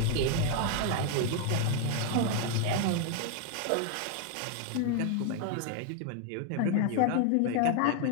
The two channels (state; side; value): different; both; correlation 0.00